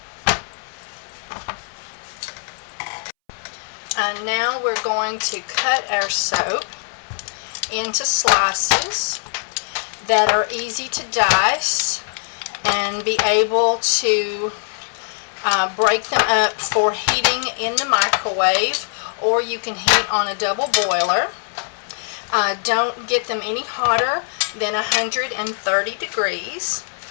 Now we're going to cut our soap into slices that are easy to dice and be able to break them up for heating in the microwave, or you can heat on a double boiler. Don't get them any hotter than 130 degrees.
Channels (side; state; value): right; silent; 65 dB below the other